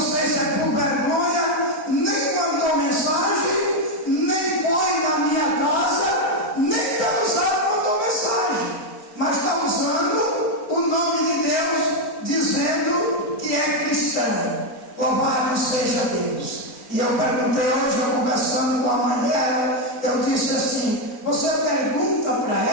se é por vergonha, nem mandou mensagem, nem foi na minha casa, nem pelo zap mandou mensagem, mas está usando o nome de Deus, dizendo que é cristã. Louvado seja Deus. E eu perguntei hoje, eu conversando com a mãe dela, eu disse assim: você pergunta para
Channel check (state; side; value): late; right; 4.1 ms